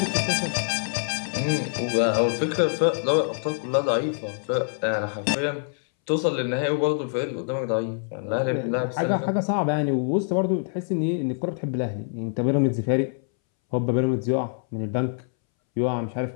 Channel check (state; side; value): silent; right; 62 dB below the other